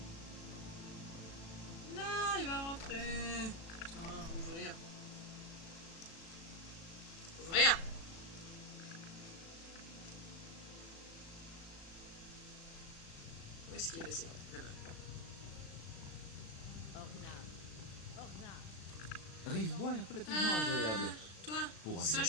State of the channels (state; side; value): late; right; 36 ms